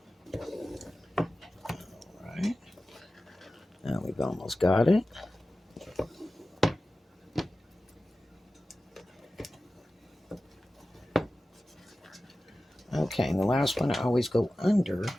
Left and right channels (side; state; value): both; normal; correlation 0.95